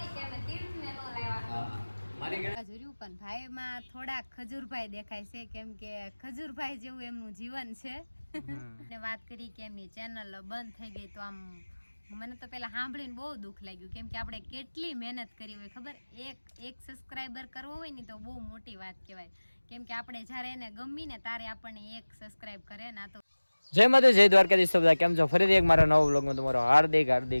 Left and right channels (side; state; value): both; inverted; correlation -1.00